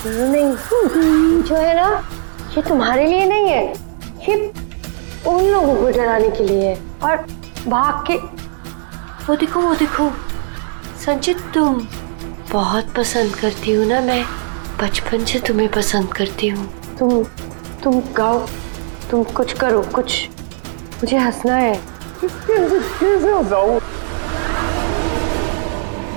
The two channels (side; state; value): left; silent; digital silence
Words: नहीं, जो है ना, ये तुम्हारे लिए नहीं है, ये उन लोगों को डराने के लिए है। और भाग के वो देखो संचित, तुम बहुत पसंद करती हो ना, मैं बचपन से तुम्हें पसंद करती हूँ। तुम गाओ, तुम कुछ करो, कुछ, मुझे हंसना है। कैसे हंसाऊं?